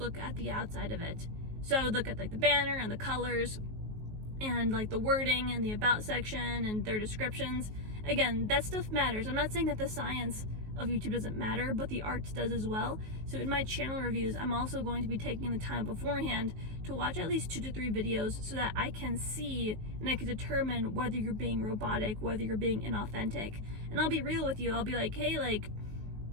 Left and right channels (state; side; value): late; left; 19 ms